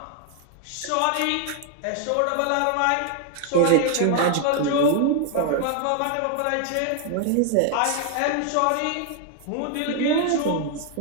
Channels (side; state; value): both; different; correlation 0.00